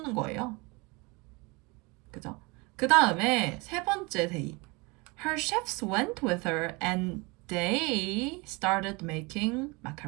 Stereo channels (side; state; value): left; quieter; 26.9 dB